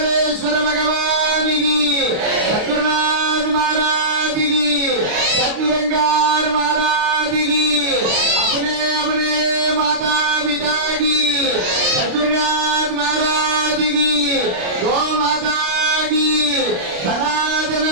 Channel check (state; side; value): late; left; 28 ms